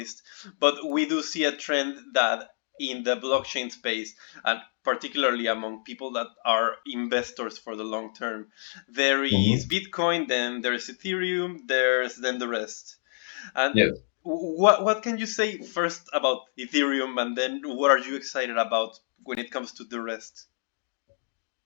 but we do see a trend that in the blockchain space, and particularly among people that are investors for the long term, there is Hmm. Bitcoin, then there's Ethereum, there's then the rest. And Yes. what can you say first about Ethereum, and then what are you excited about when it comes to the rest?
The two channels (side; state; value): right; silent; digital silence